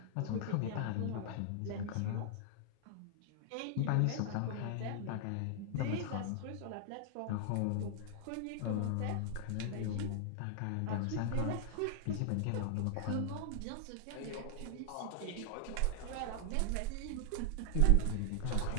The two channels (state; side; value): different; both; correlation -0.01